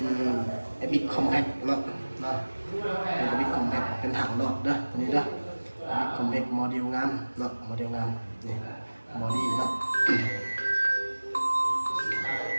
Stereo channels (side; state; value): both; inverted; correlation -1.00